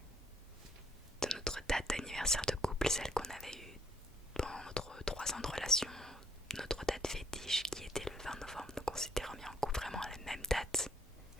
de notre date d'anniversaire de couple, celle qu'on avait eue pendant notre 3 ans de relation, notre date fétiche qui était le 20 novembre. Donc on s'était remis en couple vraiment à la même date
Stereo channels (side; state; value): both; normal; correlation 0.67